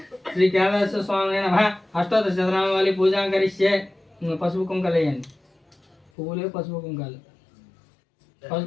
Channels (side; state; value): right; drops out; at 6.1 s